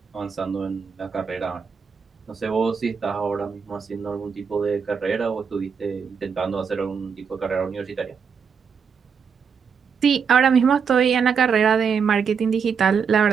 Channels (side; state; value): left; quieter; 6.4 dB